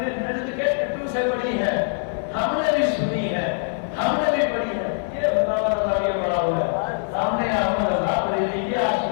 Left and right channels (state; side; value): silent; right; digital silence